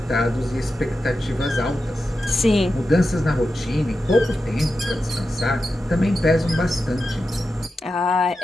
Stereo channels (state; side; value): normal; both; correlation 0.90